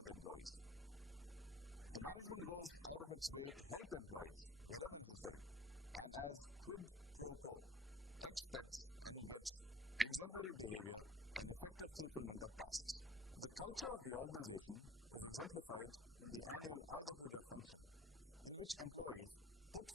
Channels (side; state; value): both; normal; correlation 0.47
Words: the employees. The management goes out of its way to help employees wherever necessary and as quid pro quo expects and gets exemplary behavior and effective fulfillment of tasks. The culture of the organization is exemplified in the annual Ayudha Puja function, in which employees put